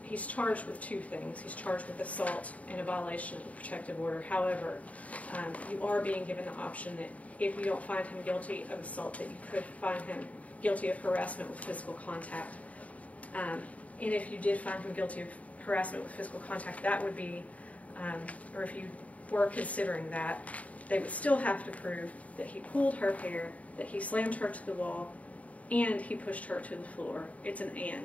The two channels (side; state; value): right; late; 0.069 ms